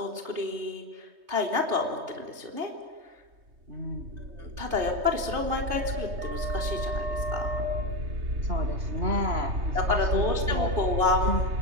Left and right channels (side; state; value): left; late; 3.2 ms